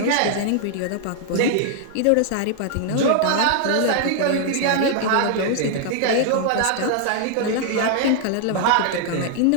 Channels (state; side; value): different; both; correlation 0.00